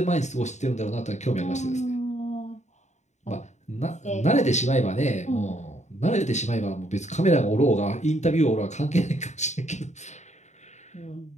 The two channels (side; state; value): right; late; 0.34 ms